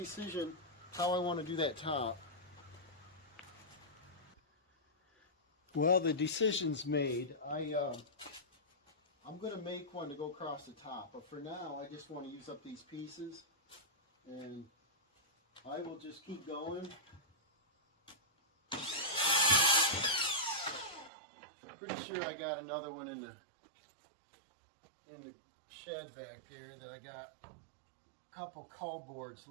how I want to do that top. Well, the decision's made. I'm going to make one to go across the top, but for now I just want to use up these pieces, and I will just keep going. Pretty sure I got another one in the shed back there that I got a couple cull boards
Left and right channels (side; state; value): left; drops out; at 21.1 s